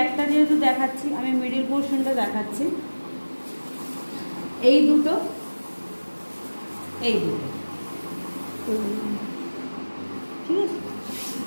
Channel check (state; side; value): inverted; both; correlation -1.00